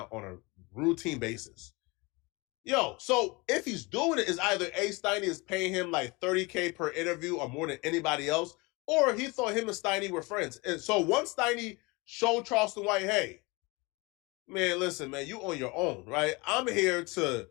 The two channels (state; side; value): quieter; right; 26.0 dB